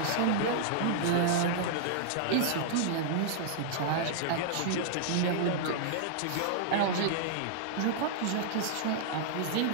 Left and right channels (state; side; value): different; both; correlation -0.01